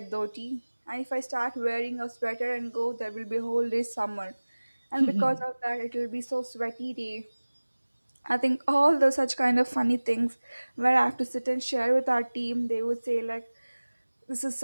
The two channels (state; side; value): inverted; both; correlation -1.00